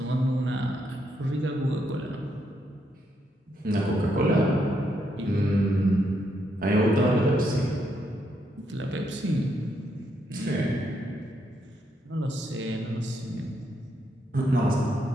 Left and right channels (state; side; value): normal; both; correlation 0.78